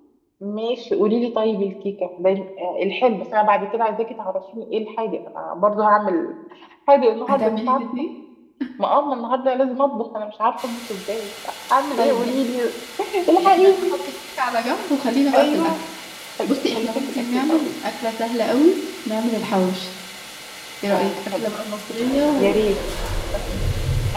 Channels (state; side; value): identical; both; correlation 1.00